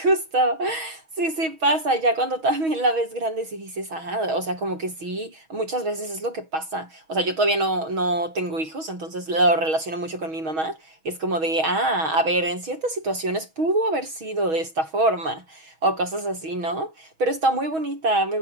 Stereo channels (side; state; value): left; late; 6.3 ms